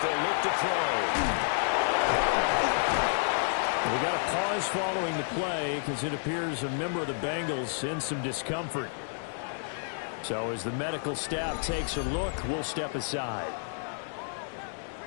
they'll look to throw. We got a pause following the play because it appears a member of the Bengals in some discomfort. So as the medical staff takes a look, we'll step aside.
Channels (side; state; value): right; silent; digital silence